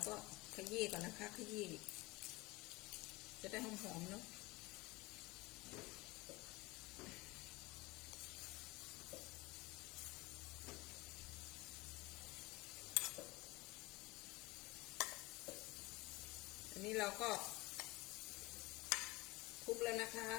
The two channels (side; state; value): right; quieter; 21.9 dB